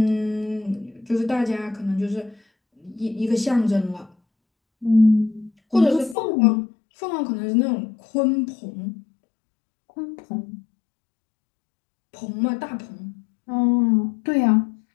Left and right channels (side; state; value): right; drops out; at 6.2 s